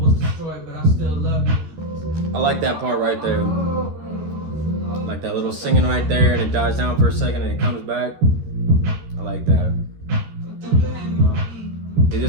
I like that part right there. Like that little singing right there, and it dies down for a second and it comes back. I like that.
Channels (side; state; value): left; late; 13 ms